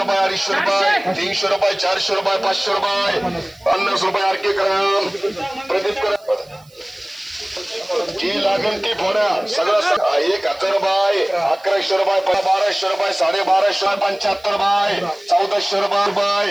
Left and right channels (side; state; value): right; noise; hiss, 29 dB below the sound